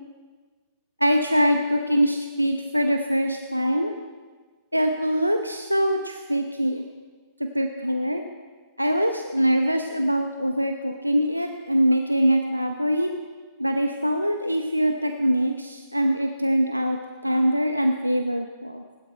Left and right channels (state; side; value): inverted; both; correlation -0.92